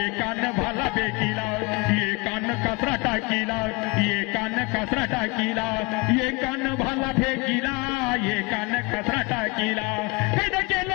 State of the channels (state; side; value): quieter; right; 26.2 dB